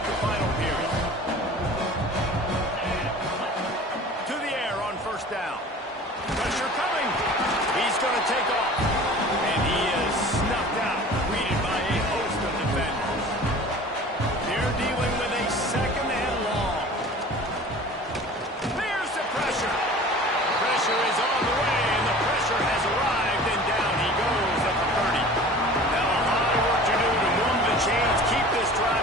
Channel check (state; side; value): normal; both; correlation 0.42